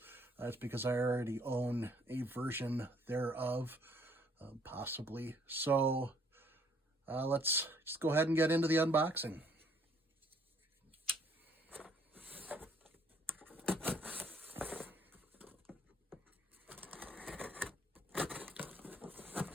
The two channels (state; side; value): normal; both; correlation 0.63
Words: That's because I already own a version thereof, possibly. So let's just go ahead and get into the unboxing.